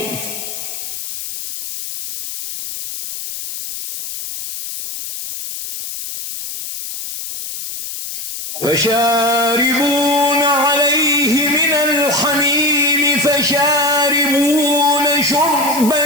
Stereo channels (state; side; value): noise; left; hiss, 8 dB below the sound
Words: فشاربون عليه من الحميم فشاربون شرب